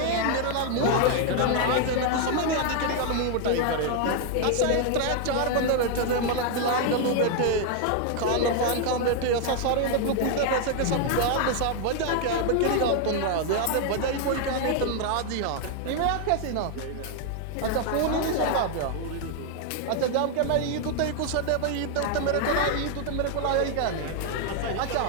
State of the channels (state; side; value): different; both; correlation 0.00